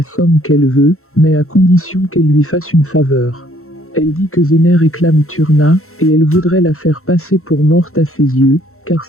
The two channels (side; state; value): right; late; 0.63 ms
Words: somme qu'elle veut, mais à condition qu'elle lui fasse une faveur. Elle dit que Zeynep réclame Turna, et elle voudrait la faire passer pour morte à ses yeux, car